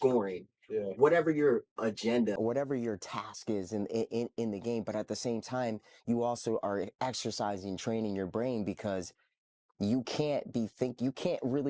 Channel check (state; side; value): identical; both; correlation 1.00